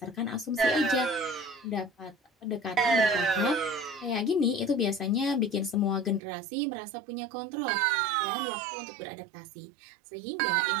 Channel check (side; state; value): left; drops out; at 6.2 s